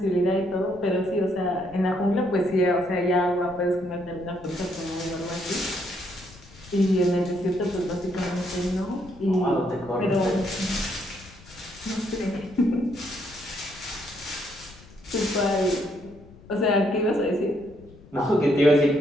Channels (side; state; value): left; noise; rumble, 22 dB below the sound